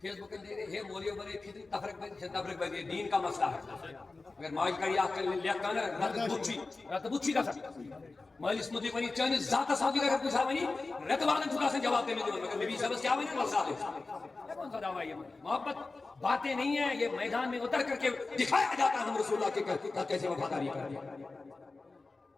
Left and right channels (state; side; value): quieter; right; 3.6 dB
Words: فیس بک دے رہے ہیں مولیوں بنے پھر تفرق بنے دین کا مسئلہ ہے اگر ماج کری آکھ کر لیا کانا رات بچی کا سکتا مالی اس مدی بنی چاہنے ذات صحابی کا کوئی صحابی نہیں رت والا چھوٹا سے جواب دینے دیوان مگر نبی صاحب کیا بنے مسئلہ ہے کون سا دعویٰ یہ محبت باتیں نہیں ہیں یہ میدان میں اتر کر کے دکھایا جاتا ہے ہم رسول اللہ کے کیسے وفاداری کر دیا